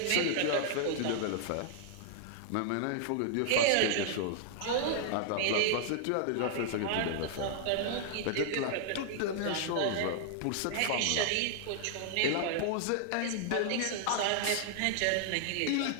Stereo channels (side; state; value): both; different; correlation -0.01